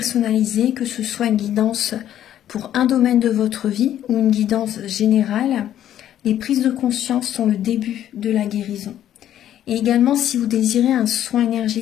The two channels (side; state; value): right; quieter; 11.3 dB